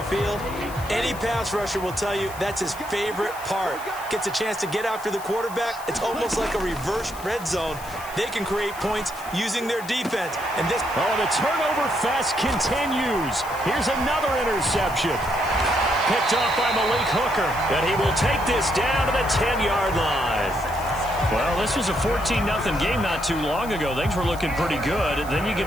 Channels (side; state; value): left; noise; hiss, 16 dB below the sound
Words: field, any pass rusher will tell you that's his favorite part. Gets a chance to get after the quarterback. It's almost like a reverse red zone. They can create points using their defense. And this... Oh, the turnover fest continues. Here's another interception. Picked off by Malik Hooker. And he will take this down to the 10-yard line. Well, this was a 14-0 game not too long ago. Things were looking pretty good. Then you